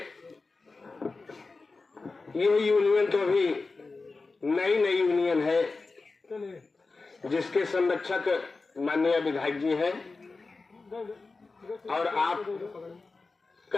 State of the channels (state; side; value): quieter; right; 3.9 dB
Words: ये यूनियन तो अभी नई यूनियन है, जिसके संरक्षक माननीय विधायक जी हैं और आप